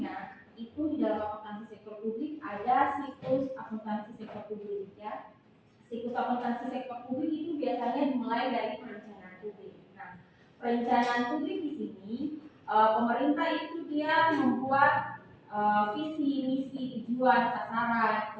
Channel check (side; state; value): both; identical; correlation 1.00